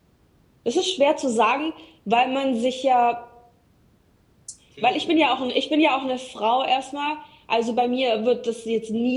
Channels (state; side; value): identical; both; correlation 1.00